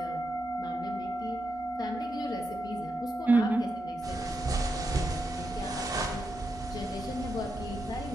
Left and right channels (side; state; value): both; normal; correlation 0.86